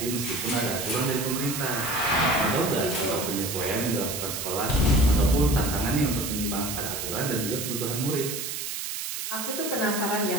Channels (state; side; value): noise; right; hiss, 5 dB below the sound